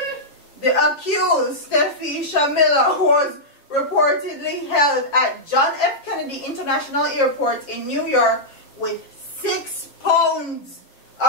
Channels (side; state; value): right; late; 7.3 ms